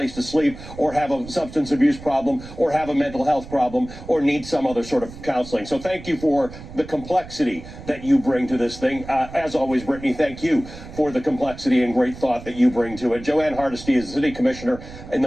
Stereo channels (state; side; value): noise; right; rumble, 15 dB below the sound